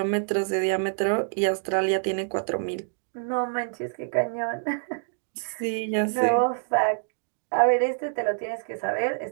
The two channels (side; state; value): left; silent; digital silence